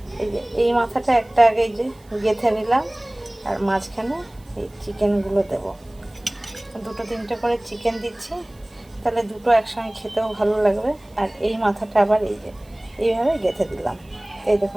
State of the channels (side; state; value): right; noise; hiss, 30 dB below the sound